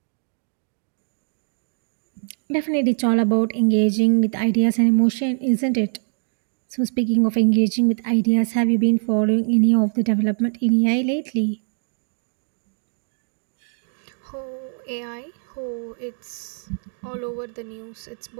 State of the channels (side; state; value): left; silent; 63 dB below the other